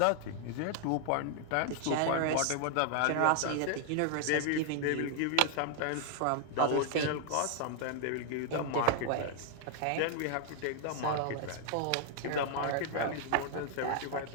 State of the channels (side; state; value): both; different; correlation 0.00